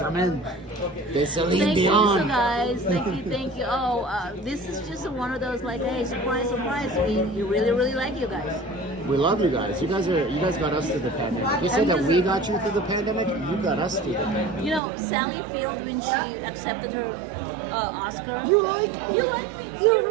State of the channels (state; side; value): drops out; left; at 14.8 s